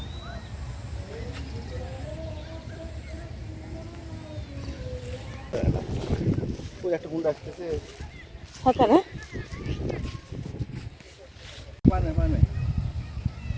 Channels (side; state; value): both; identical; correlation 1.00